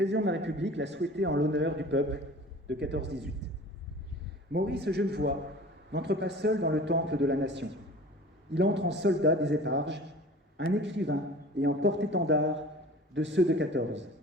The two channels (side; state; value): both; normal; correlation 0.42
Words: de la République l'a souhaité en l'honneur du peuple de 14-18. Maurice Genevoix n'entre pas seul dans le temple de la nation. Il entre en soldat des éparges, un écrivain et en porte-étendard de ceux de 14.